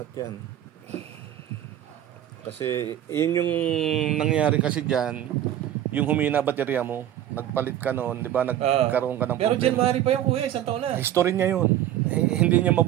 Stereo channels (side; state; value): left; quieter; 11.8 dB